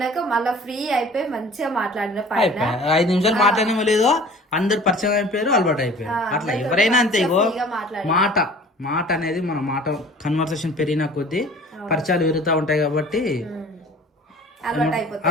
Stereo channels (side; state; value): both; normal; correlation 0.47